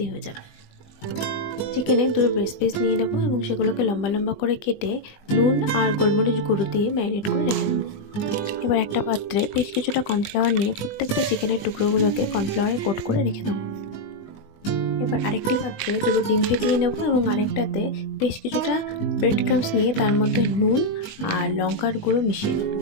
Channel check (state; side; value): late; right; 20 ms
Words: হয়ে যাবে। চিকেনে দুটো ব্রেস্ট পিস নিয়ে নেবো এবং সেগুলোকে লম্বা লম্বা করে কেটে নুন আর গোলমরিচ গুঁড়ো দিয়ে ম্যারিনেট করে রেখে দেবো। এবার একটা পাত্রে বেশ কিছুটা কর্নফ্লাওয়ার নিয়ে প্রত্যেকটা চিকেনের টুকরোগুলোকে কর্নফ্লাওয়ারে কোট করে রেখে দেবো। এবার আরেকটি পাত্রে দুটো ডিম ফেটিয়ে নেব এবং আরেকটাতে বেশ কিছুটা ব্রেড ক্রাম্বস নিয়ে তার মধ্যে নুন আর লঙ্কার গুঁড়ো মিশিয়ে নেব।